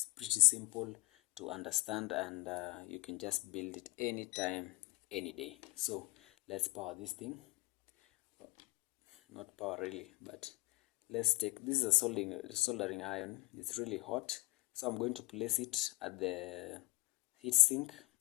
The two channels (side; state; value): right; quieter; 23.7 dB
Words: pretty simple to understand, and you can just build it anytime, any day. So let's power this thing. Not power really, but let's take, this is a soldering iron. It's really hot, so I'm going to place it at the heat sink,